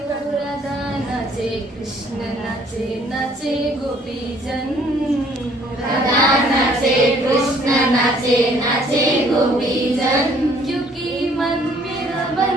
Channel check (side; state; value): both; normal; correlation 0.60